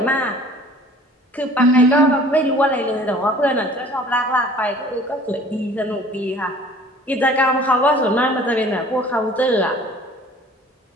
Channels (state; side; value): normal; both; correlation 0.49